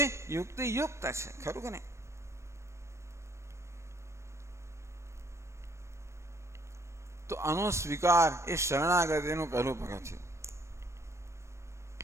યુક્ત છે. ખરું કે નહીં? તો આનો સ્વીકાર એ શરણાગતિનું પહેલું પગથિયું.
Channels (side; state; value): left; late; 0.13 ms